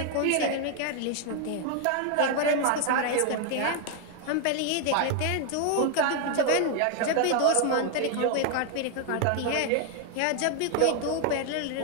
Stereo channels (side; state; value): both; different; correlation 0.01